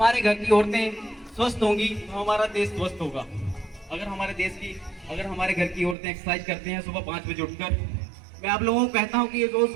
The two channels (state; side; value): drops out; left; at 6.0 s